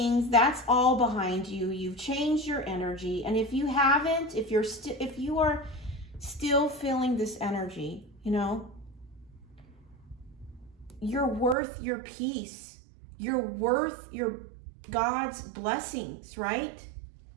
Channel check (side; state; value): left; drops out; at 11.6 s